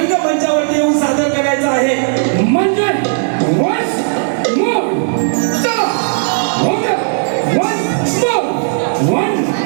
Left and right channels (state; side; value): silent; left; digital silence